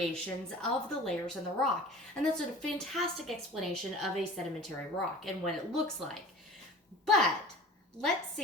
of the layers in the rock. And that's a fantastic explanation of a sedimentary rock and what it looks like. But let's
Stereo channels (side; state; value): both; normal; correlation 0.42